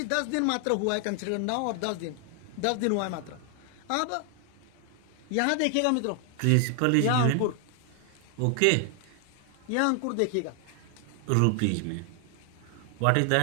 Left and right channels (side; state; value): both; different; correlation 0.00